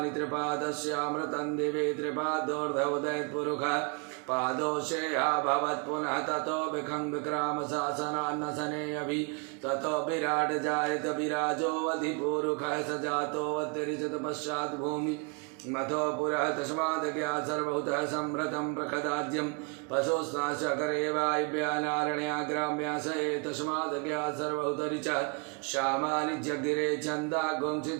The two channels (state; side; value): quieter; left; 34.7 dB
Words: त्रिपादस्यामृतं दिवे त्रिपादोर्धवदयत् पुरुषः पादोषेया भवत् पुनः ततो विखं विक्राम शासनान्नसने अभि ततो विराट जायत विराजो अधिपूरुखः स जातो अतिरिचत पश्चात् भूमि मथो पुरः तस्मादज्ञा सर्वभूतः संवृतं प्रखदाद्यं पशुस्नाशकरे वायव्यानारण्या ग्राम्या स तस्मादज्ञा सर्वभूतरिचः श्यामानि जगिरे छन्दा गुंसि